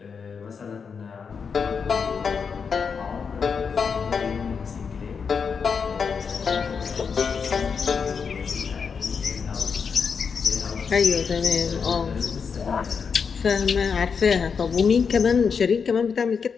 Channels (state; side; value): quieter; right; 6.0 dB